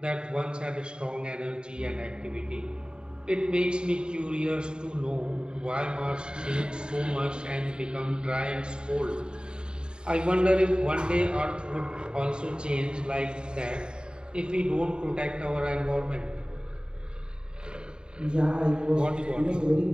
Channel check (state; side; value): late; left; 0.049 ms